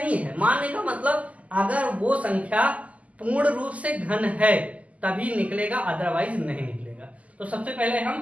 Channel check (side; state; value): left; late; 0.071 ms